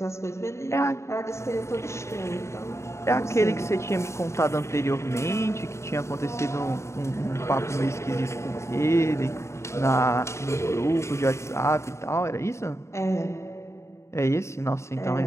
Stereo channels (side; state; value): right; late; 0.14 ms